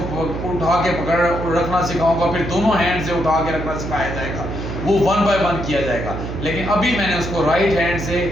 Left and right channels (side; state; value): right; noise; hum, 6 dB below the sound